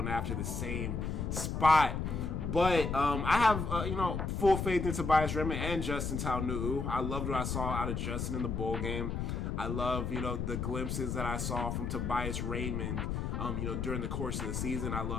after the same spot. But I have, full faith in Tobias Raymond and Justin Taunu'u. I loved what I saw out of Justin in the bowl game. I love, the glimpses that I saw from Tobias Raymond, during the course of the season. I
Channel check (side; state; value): left; noise; rumble, 2 dB below the sound